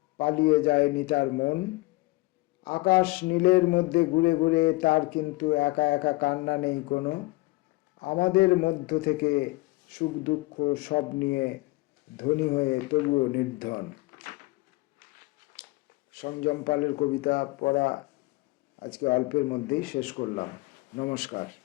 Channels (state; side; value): quieter; right; 22.4 dB